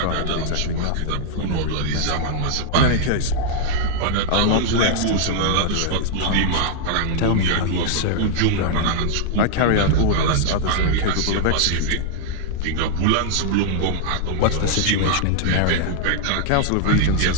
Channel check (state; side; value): different; both; correlation 0.00